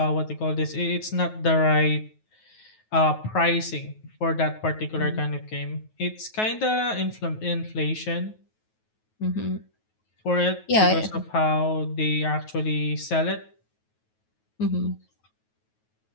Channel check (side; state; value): right; late; 9.3 ms